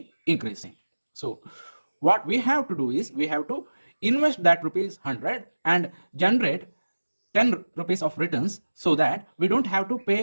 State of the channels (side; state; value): both; inverted; correlation -1.00